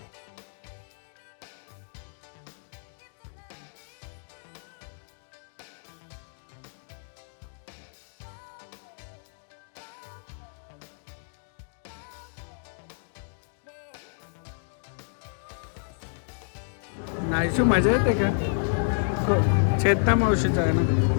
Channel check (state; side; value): silent; right; digital silence